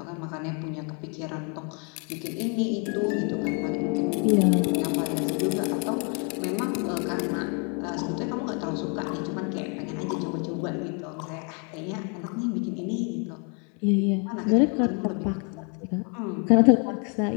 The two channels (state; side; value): quieter; right; 36.5 dB